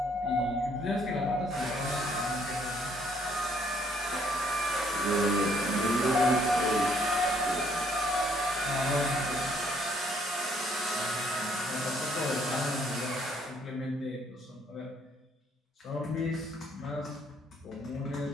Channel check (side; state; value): both; normal; correlation 0.66